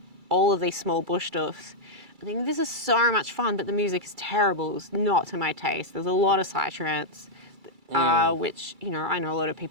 all of these small bush stuffs. I think this is so much fun, but the music is terrible. It's not to my taste. There's a lot of psytrance, which, I know a lot of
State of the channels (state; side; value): late; left; 2.3 ms